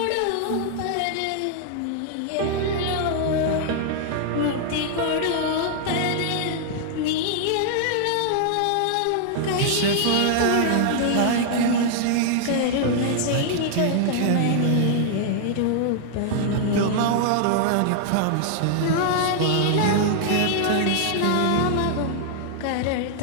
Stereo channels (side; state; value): both; different; correlation 0.00